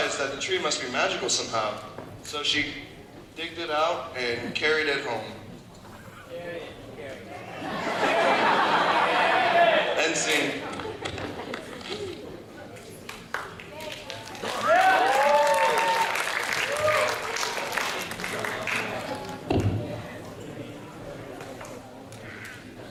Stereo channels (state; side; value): identical; both; correlation 1.00